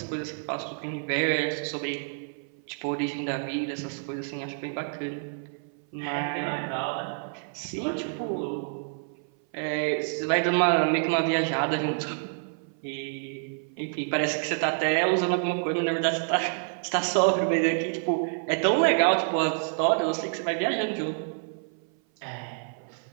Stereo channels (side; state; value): left; silent; 57 dB below the other